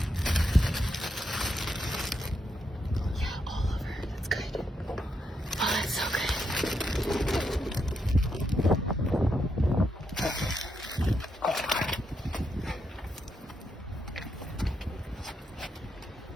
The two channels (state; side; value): normal; both; correlation 0.81